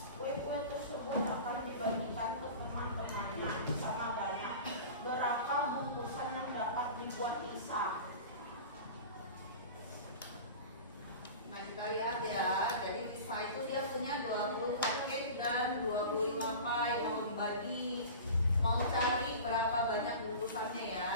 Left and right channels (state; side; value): inverted; both; correlation -0.35